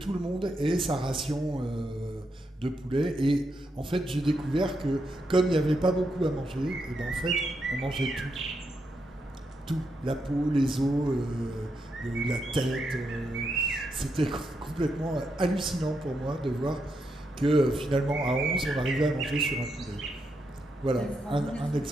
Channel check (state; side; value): normal; both; correlation 0.82